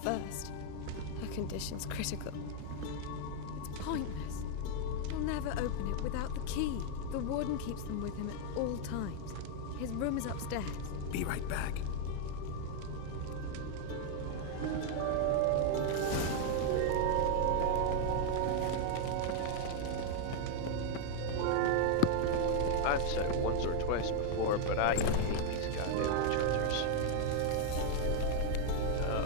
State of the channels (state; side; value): different; both; correlation 0.00